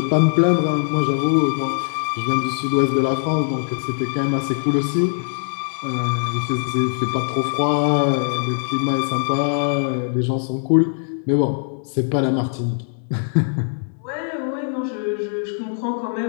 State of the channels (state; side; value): silent; right; digital silence